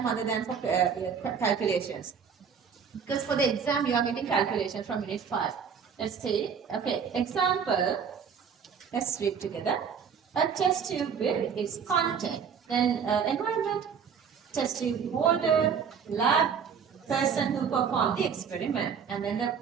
other than for calculations. Because for the exam, you are getting calculations from unit 5. Let's see. Okay. Example. Let's read together. A test tube with its content. Then environment, test tube holder, lab, person who performed the experiment, and then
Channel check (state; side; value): quieter; left; 6.8 dB